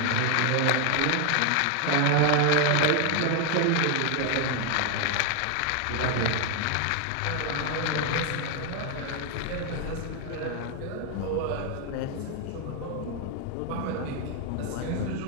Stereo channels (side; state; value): both; different; correlation 0.01